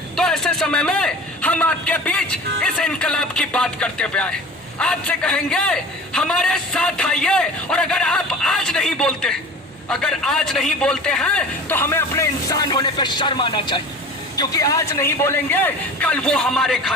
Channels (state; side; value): normal; both; correlation 0.38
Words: तो ऐसे समय में हम आपके बीच इस इनकलाब की बात करते हुए आए, आपसे कहेंगे हमारे साथ आइए। और अगर आप आज नहीं बोलते हैं तो हमें अपने इंसान होने पे शर्म आना चाहिए, क्योंकि आज नहीं बोलेंगे कल वो हमारे